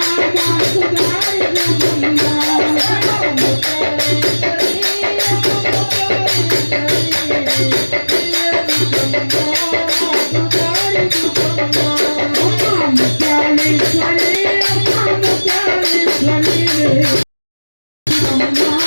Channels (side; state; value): both; inverted; correlation -1.00